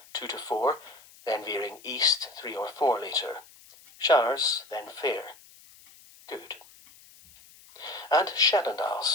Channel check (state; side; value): noise; left; hiss, 24 dB below the sound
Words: 2 to 4, then veering east 3 or 4 later. Showers, then fair. Good. And